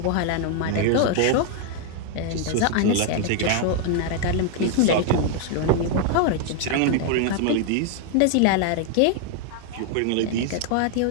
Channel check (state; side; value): different; both; correlation 0.00